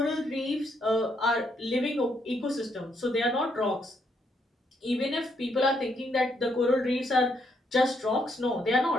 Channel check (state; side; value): normal; both; correlation 0.74